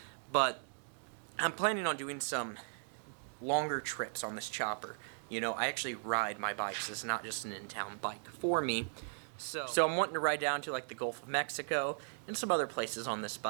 but I'm planning on doing some longer trips on this chopper. You know, I actually ride my bikes. It's not just an in-town bike for me. So I'm wanting to ride down to like the Gulf of Mexico and some other places on this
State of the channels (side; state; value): left; silent; digital silence